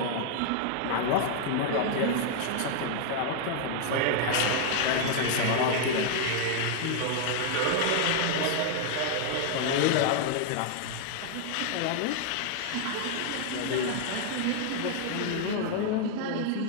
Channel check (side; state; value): both; different; correlation 0.00